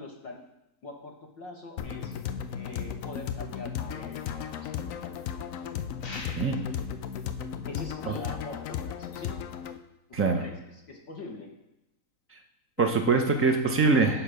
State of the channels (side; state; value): right; late; 3.9 ms